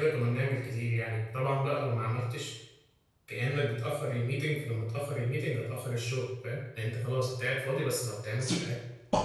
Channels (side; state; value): both; identical; correlation 1.00